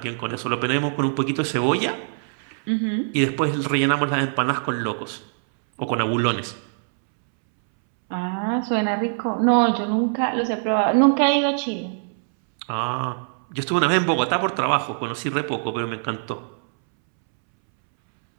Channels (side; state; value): left; silent; 64 dB below the other